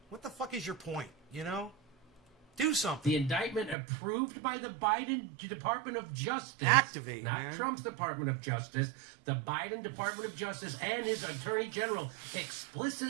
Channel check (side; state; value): left; drops out; at 3.8 s